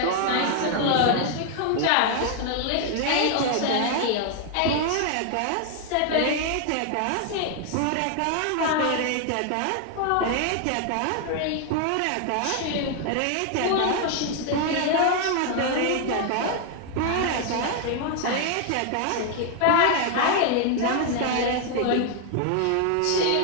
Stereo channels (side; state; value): both; different; correlation 0.00